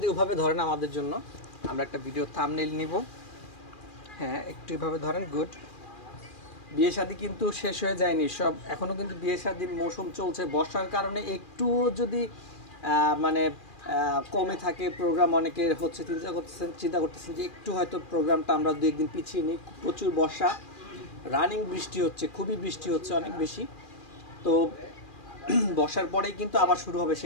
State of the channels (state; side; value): late; right; 2.4 ms